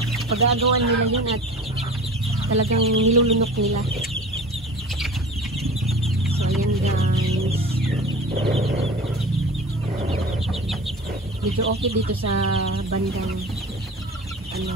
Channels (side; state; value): both; normal; correlation 0.38